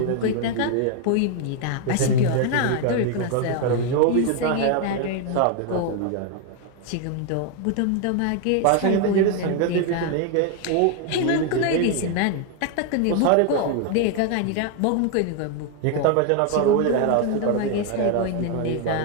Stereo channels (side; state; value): both; different; correlation 0.00